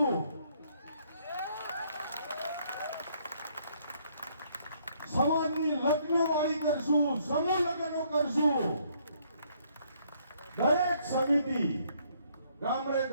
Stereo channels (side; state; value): both; inverted; correlation -0.67